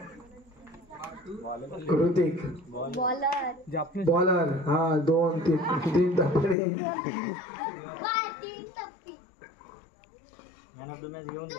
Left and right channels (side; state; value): right; drops out; at 6.6 s